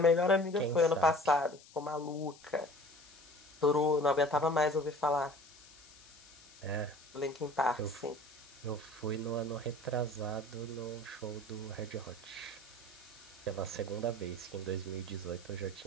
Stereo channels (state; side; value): noise; left; hiss, 22 dB below the sound